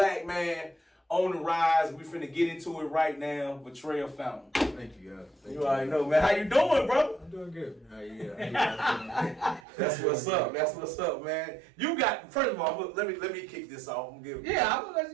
man on the rise. We finna get into it right now. Vatrell Fountain. Thank you, guys. You already know, man. How you doing, bro? I'm doing good. How you? That's what's up. That's what's up, man. You got. First of all, let me kick this off. I'm gonna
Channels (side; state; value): left; drops out; at 9.6 s